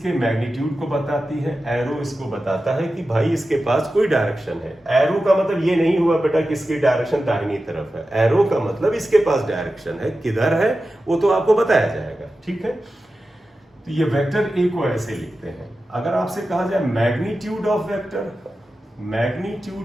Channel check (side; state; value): both; normal; correlation 0.93